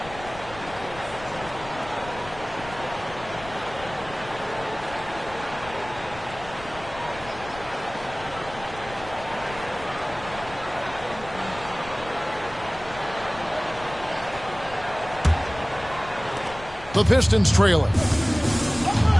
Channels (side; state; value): left; noise; rumble, 16 dB below the sound